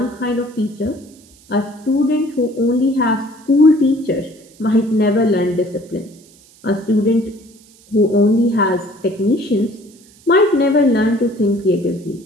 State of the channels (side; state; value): right; noise; hiss, 27 dB below the sound